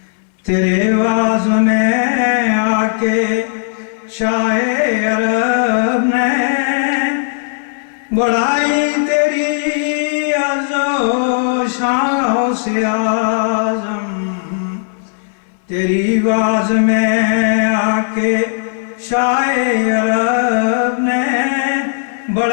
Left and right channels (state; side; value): silent; right; 62 dB below the other